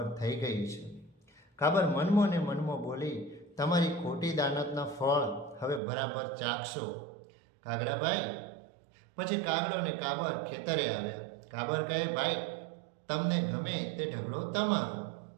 થઈ ગઈ છે. કાબર મનમો ને મનમો બોલી, તમારી ખોટી દાનતના ફળ હવે બરાબર ચાખશો. કાગડાભાઈ પછી કાગડો ને કાબર ખેતરે આવ્યા. કાબર કહે, ભાઈ, તમને ગમે તે ઢગલો તમારો.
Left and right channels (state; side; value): drops out; left; at 5.8 s